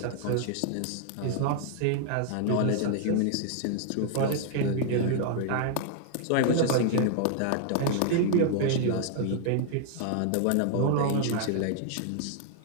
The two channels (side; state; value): both; different; correlation 0.00